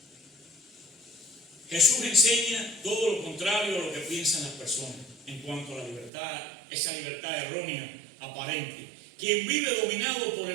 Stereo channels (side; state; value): left; drops out; at 6.1 s